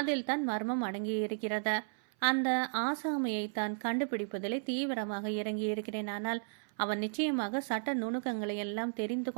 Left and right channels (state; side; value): silent; left; 55 dB below the other